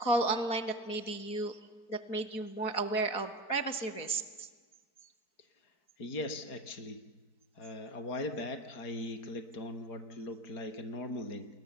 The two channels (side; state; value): right; late; 4.6 ms